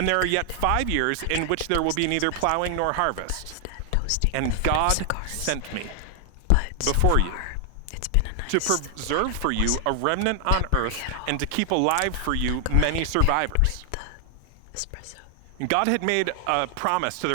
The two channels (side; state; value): both; different; correlation 0.00